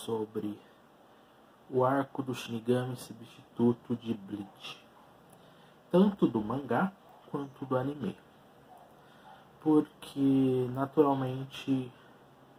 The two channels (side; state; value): both; identical; correlation 1.00